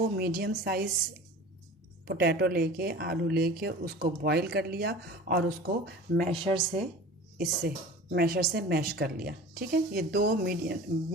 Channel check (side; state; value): both; normal; correlation 0.39